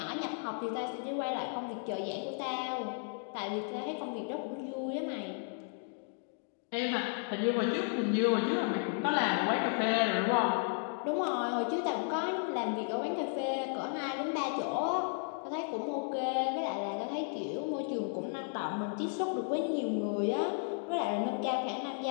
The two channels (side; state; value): right; silent; 55 dB below the other